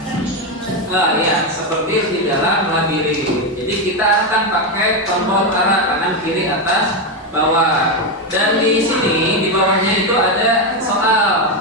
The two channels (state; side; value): normal; both; correlation 0.08